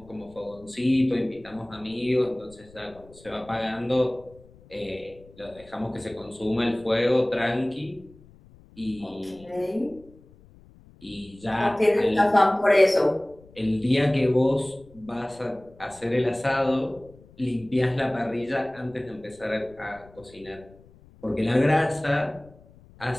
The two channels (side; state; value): left; noise; rumble, 25 dB below the sound